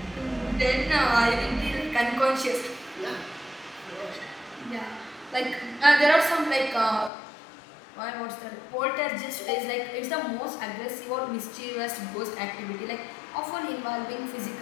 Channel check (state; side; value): drops out; right; at 7.1 s